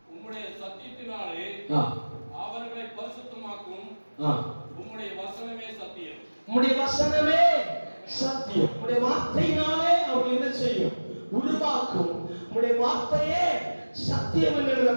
உம்முடைய சத்தியத்தினாலே அவர்களை பரிசுத்தமாக்கும். உம்முடைய வசனமே சத்தியம். உம்முடைய வசனமே சத்தியம். உம்முடைய வார்த்தையினாலே அவர்கள் என்ன செய்யும்? உருவாக்கும். உம்முடைய வார்த்தையே சத்தியம் என்று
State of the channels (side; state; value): both; inverted; correlation -1.00